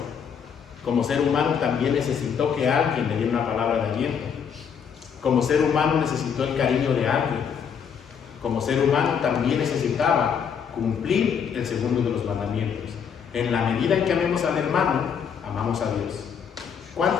Como ser humano también necesitó que alguien le diera una palabra de aliento. Como ser humano necesitó el cariño de alguien. Como ser humano también necesitaba cumplir el segundo de los mandamientos. En la medida en que amemos al hermano, amamos a Dios.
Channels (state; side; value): quieter; right; 7.2 dB